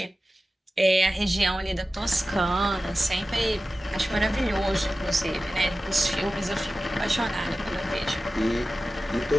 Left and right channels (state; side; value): normal; both; correlation 0.95